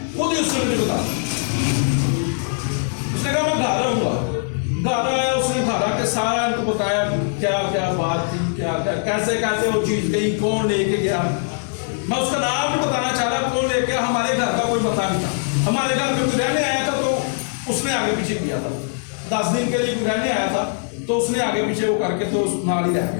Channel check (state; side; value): silent; right; digital silence